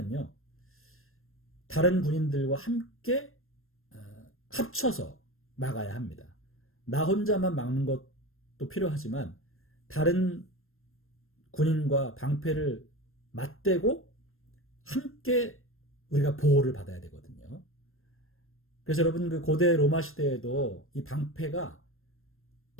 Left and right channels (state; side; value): late; right; 0.61 ms